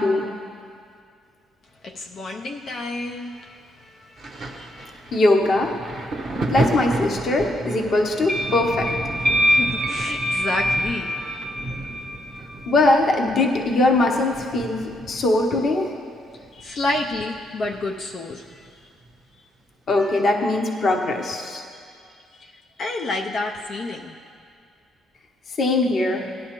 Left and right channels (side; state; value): both; normal; correlation 0.76